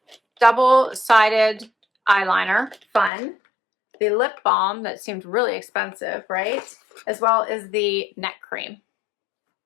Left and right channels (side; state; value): right; drops out; at 3.1 s